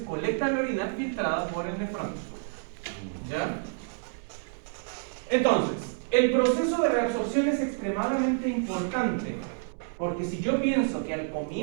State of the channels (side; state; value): left; silent; digital silence